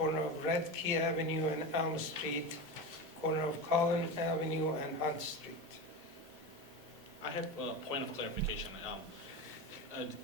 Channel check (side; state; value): both; normal; correlation 0.23